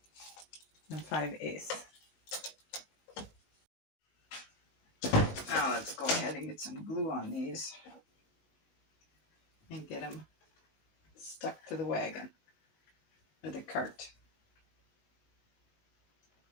5/8. Now let's go ahead and get some glue on these and get them stuck to the wagon or the cart.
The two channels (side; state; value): right; late; 20 ms